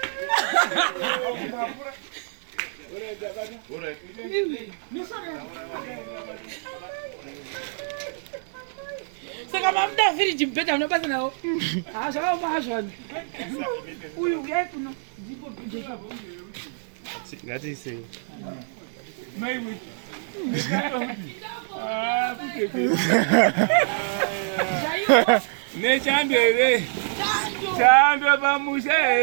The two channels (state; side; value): silent; left; 61 dB below the other